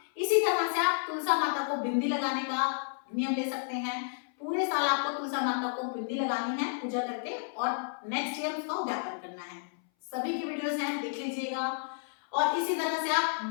इसी तरह से आप तुलसा माता को बिंदी लगाने का नियम ले सकते हैं। पूरे साल आपको तुलसा माता को बिंदी लगानी है पूजा करके और नेक्स्ट ईयर उसका उद्यापन करना है। सभी की वीडियोस हैं, देख लीजिएगा। और इसी तरह से आप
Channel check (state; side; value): silent; right; 57 dB below the other